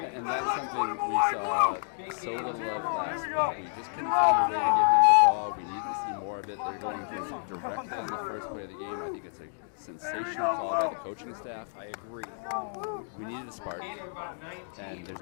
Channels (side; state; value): right; silent; digital silence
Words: And that's something we saw so little of last week. We just couldn't find a way to give him the ball. We need to see more of it. They're going to directly on the first play of the game. I think it's a sensational call by the coaching staff. I agree. We needed a spark, and there's